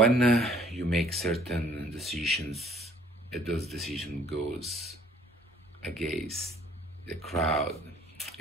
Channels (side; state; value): both; normal; correlation 0.58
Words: you make certain decisions, and those decisions goes against the crowd,